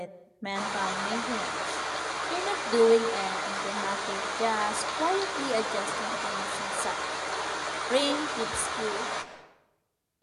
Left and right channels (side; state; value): both; identical; correlation 1.00